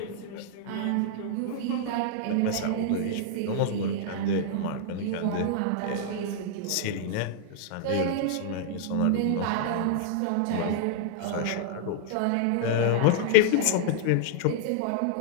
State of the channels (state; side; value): different; both; correlation -0.01